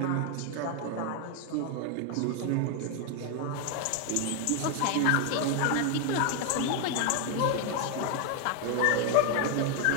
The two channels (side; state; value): both; different; correlation 0.01